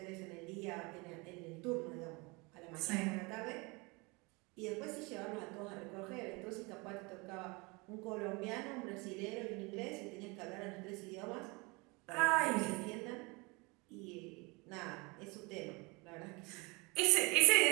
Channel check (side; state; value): left; quieter; 27.1 dB